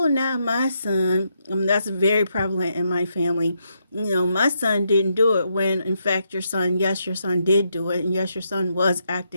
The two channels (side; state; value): both; inverted; correlation -0.80